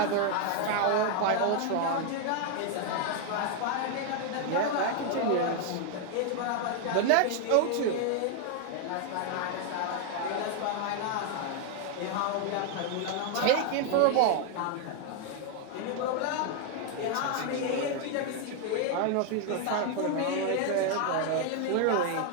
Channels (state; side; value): different; both; correlation 0.00